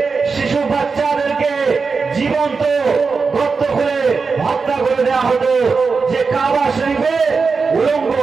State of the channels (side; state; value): left; quieter; 4.8 dB